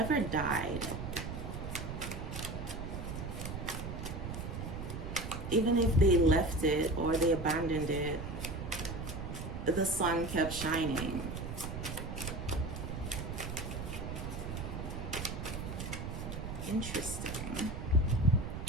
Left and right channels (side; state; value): right; noise; rumble, 6 dB below the sound